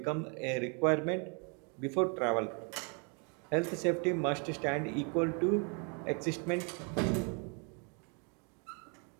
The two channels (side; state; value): left; quieter; 36.3 dB